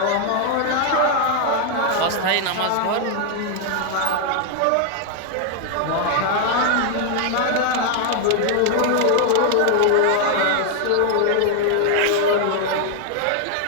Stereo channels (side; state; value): both; different; correlation 0.00